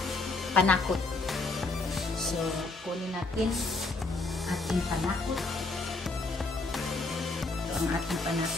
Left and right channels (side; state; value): right; quieter; 3.3 dB